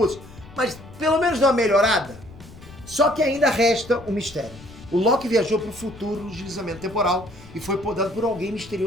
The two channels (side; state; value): left; noise; rumble, 19 dB below the sound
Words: mas pelo menos deu uma melhorada. Só que ainda resta um mistério. O Loki viajou para o futuro no deslizamento temporal e foi podado por alguém